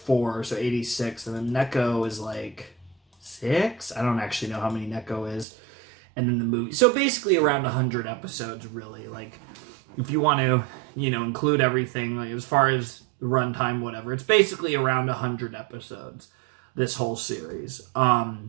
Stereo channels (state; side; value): drops out; left; at 5.5 s